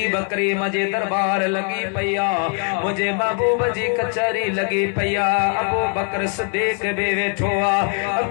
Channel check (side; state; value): right; quieter; 39.6 dB